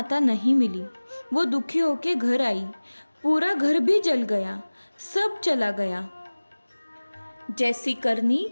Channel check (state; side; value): inverted; both; correlation -1.00